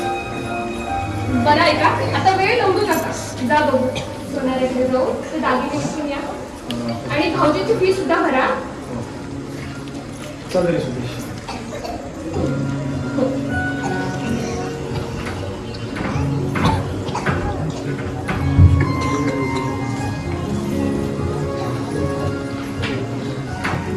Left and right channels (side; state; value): both; identical; correlation 1.00